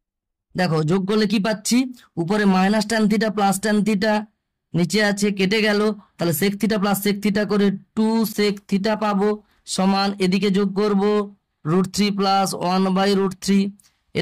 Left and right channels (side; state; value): both; identical; correlation 1.00